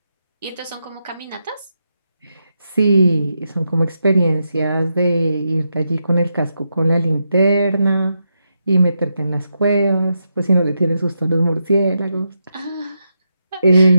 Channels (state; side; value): inverted; both; correlation -0.84